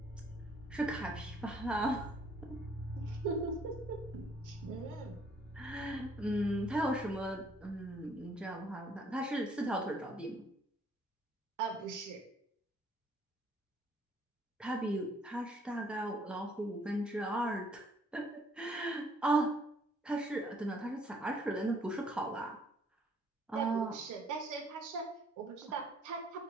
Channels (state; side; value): normal; both; correlation 0.63